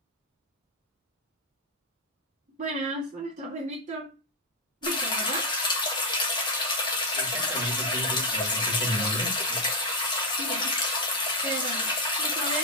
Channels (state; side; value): normal; both; correlation 0.02